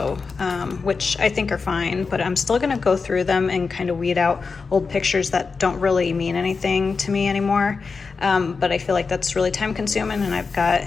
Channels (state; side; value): quieter; right; 4.8 dB